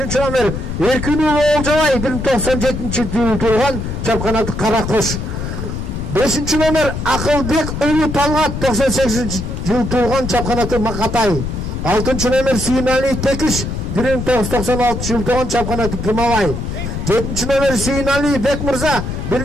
номер Эркинов Олжабай, 1997-жылы туулган, чапканаты Каракош. Бешинчи номер Акылбек Уулу Талгат, 98-жылы туулган, чапканаты Макатай. Алтынчы номер Сүйүнали Текиш, 1996-жылы туулган, чапканаты Гымабай. Жетинчи номер Сүйүнали Бекмырза,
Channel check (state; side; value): noise; left; rumble, 5 dB below the sound